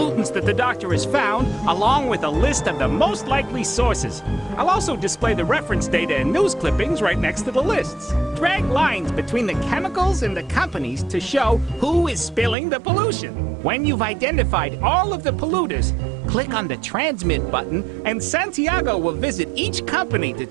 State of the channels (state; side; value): drops out; left; at 12.6 s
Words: that the doctor has found, along with a list of the most likely sources. I'll also display the reference data and news clippings right next to the lists. Drag lines between the chemicals and the companies to show who is spilling the pollution. When you've identified all of the polluters, click on the Transmit button, and Santiago will visit each company to